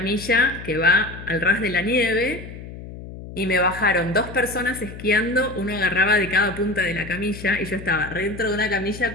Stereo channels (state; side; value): noise; left; hum, 13 dB below the sound